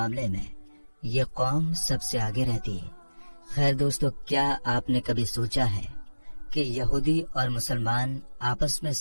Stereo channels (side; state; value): both; inverted; correlation -1.00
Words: میں یہ قوم سب سے آگے رہتی ہے۔ خیر دوستو، کیا آپ نے کبھی سوچا ہے کہ یہودی اور مسلمان آپس میں